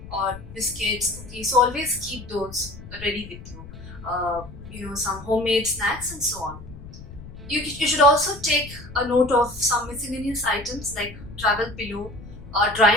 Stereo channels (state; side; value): noise; left; rumble, 15 dB below the sound